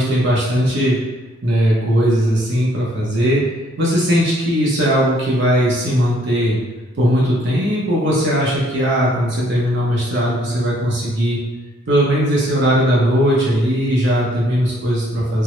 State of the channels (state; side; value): normal; both; correlation 0.66